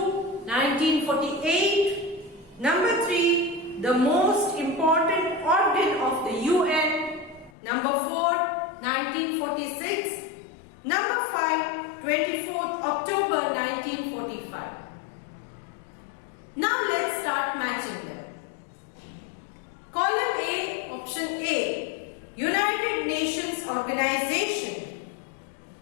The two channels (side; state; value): right; drops out; at 7.5 s